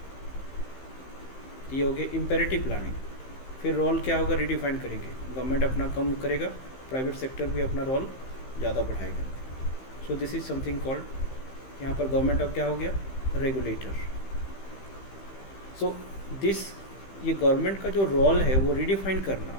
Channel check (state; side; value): late; right; 15 ms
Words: ये हो गया imperative planning. फिर role क्या होगा? रिडिफाइन करेंगे. गवर्नमेंट अपना कम करेगा, प्राइवेट सेक्टर भी अपना रोल ज़्यादा बढ़ाएगा. सो दिस इज समथिंग कॉल्ड, यहाँ पर गवर्नमेंट अब क्या हो गया? रेगुलेटर. सो दिस ये गवर्नमेंट का जो रोल है वो रिडिफाइन करना,